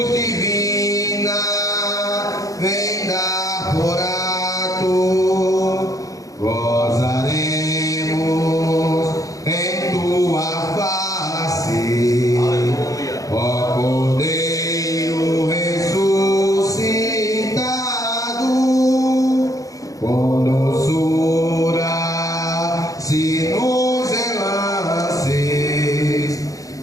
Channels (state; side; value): late; right; 0.17 ms